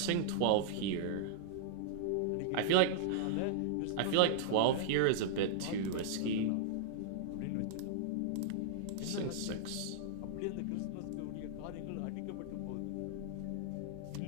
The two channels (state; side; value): different; both; correlation -0.01